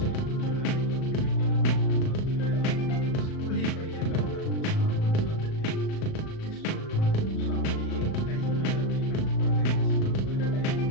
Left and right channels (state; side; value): late; right; 37 ms